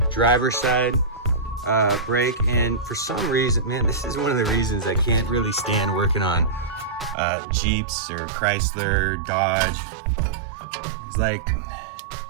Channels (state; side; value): drops out; left; at 7.2 s